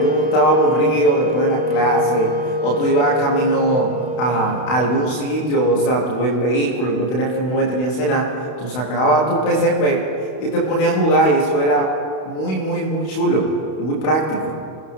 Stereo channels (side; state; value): right; late; 32 ms